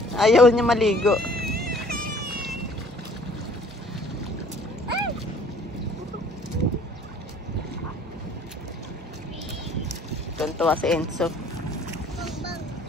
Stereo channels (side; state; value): both; normal; correlation 0.55